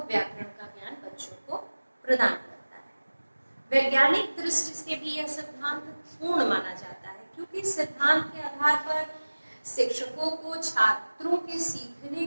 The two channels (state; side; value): inverted; both; correlation -1.00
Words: व्याकरण का ज्ञान बच्चों को प्रदान करता है। वैज्ञानिक दृष्टि से भी यह सिद्धांत पूर्ण माना जाता है, क्योंकि इस सिद्धांत के आधार पर शिक्षकों को छात्रों के सीखने